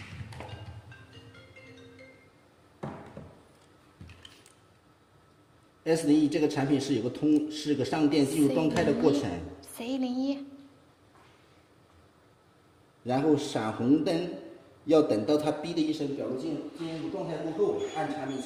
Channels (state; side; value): identical; both; correlation 1.00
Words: S01这个产品是有个是个上电进入状态的过程。C01。然后闪红灯，要等到它哔的一声表露进入状态过后，按产品